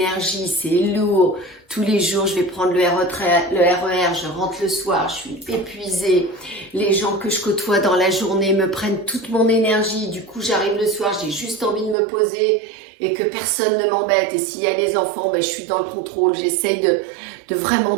c'est lourd. Tous les jours, je vais prendre le RER, je rentre le soir, je suis épuisée. Les gens que je côtoie dans la journée me prennent toute mon énergie. Du coup, j'arrive le soir, j'ai juste envie de me poser et que personne ne m'embête. Et s'il y a des enfants, ben, je suis dans le contrôle. J'essaye de vraiment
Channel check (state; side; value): drops out; left; at 12.0 s